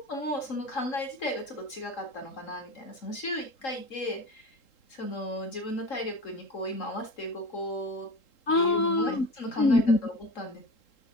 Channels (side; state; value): right; late; 3.8 ms